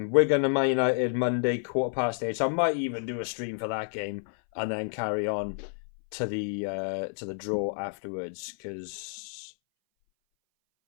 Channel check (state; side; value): silent; right; 58 dB below the other